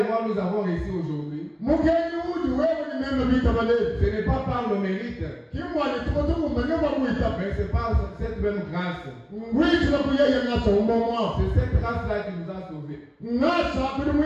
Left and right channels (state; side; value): identical; both; correlation 1.00